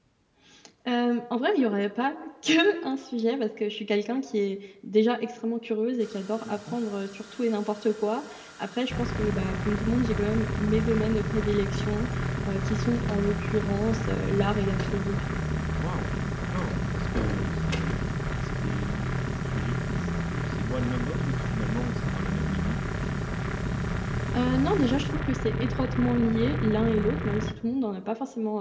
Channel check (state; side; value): identical; both; correlation 1.00